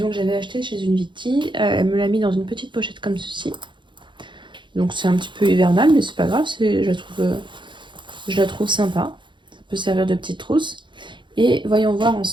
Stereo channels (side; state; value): left; late; 0.23 ms